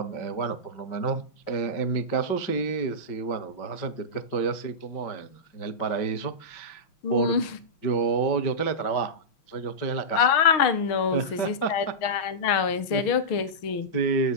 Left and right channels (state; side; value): late; right; 6.4 ms